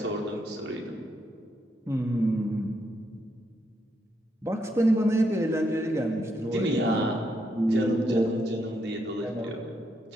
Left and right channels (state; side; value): normal; both; correlation 0.79